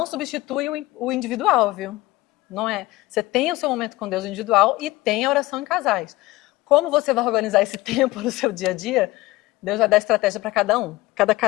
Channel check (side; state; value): right; quieter; 18.8 dB